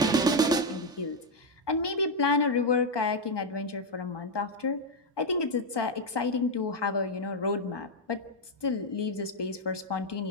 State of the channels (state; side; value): normal; both; correlation 0.03